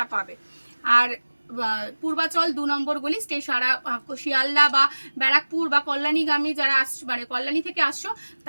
পাবে। আর পূর্বাচল 2 নম্বর গলি, শিয়ালদা বা ব্যারাকপুর বা কল্যাণীগামী যারা মানে কল্যাণী থেকে আসছো,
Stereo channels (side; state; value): both; inverted; correlation -1.00